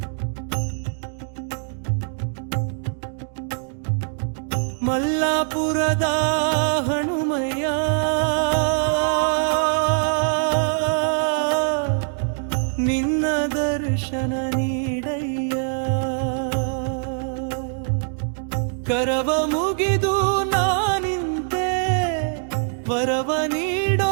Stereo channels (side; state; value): left; silent; digital silence